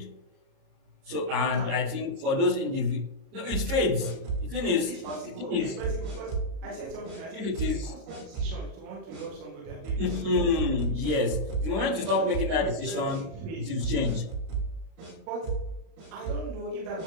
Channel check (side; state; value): left; late; 37 ms